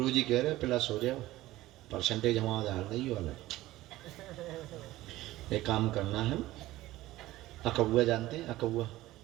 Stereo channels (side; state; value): left; quieter; 16.7 dB